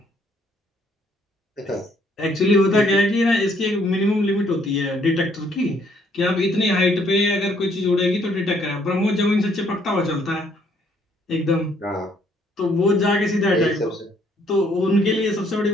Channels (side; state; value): both; normal; correlation 0.67